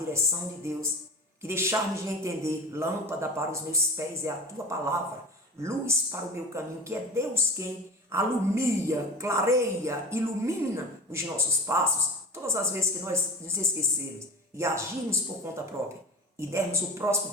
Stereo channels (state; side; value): normal; both; correlation 0.33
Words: de Deus, que deixarmos de entender, lâmpada para os meus pés é a tua palavra, luz para o meu caminho, que é Deus quem alumia, clareia, ilumina os nossos passos. Todas as vezes que nós nos esquecermos e agirmos por conta própria e dermos o